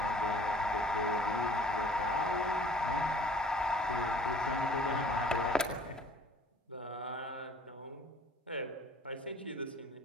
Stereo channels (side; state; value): both; normal; correlation 0.52